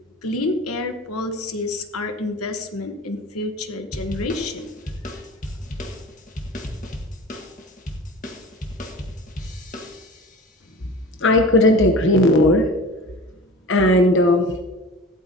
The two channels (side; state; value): both; normal; correlation 0.38